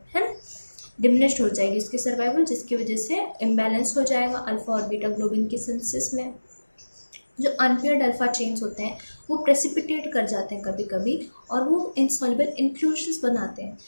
है ना, डिमिनिश्ड हो जाएगी उसकी सर्वाइवल, जिसकी वजह से इम्बैलेंस हो जाएगा अल्फा और बीटा ग्लोबिन के सिंथेसिस में। जो अनपेयर्ड अल्फा चेन्स होते हैं वो प्रेसिपिटेट कर जाते हैं कभी कभी और वो इनसॉल्युबल इंक्लूजन्स बनाते हैं।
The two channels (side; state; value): both; inverted; correlation -1.00